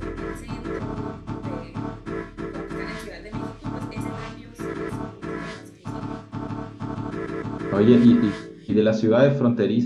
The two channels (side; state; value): both; identical; correlation 1.00